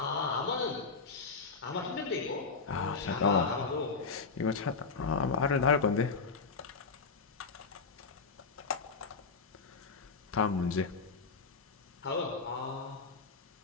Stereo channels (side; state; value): right; quieter; 4.6 dB